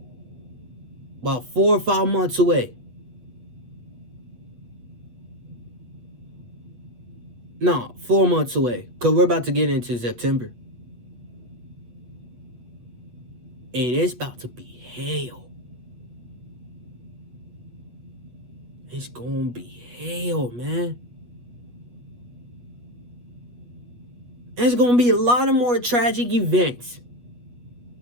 About 4 or 5 months away. No, 4 months away. Because we're about to get into September. And it's about to be hell. It's gonna be hell, man. There's gonna be a lot of more tragic events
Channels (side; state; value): left; late; 8.2 ms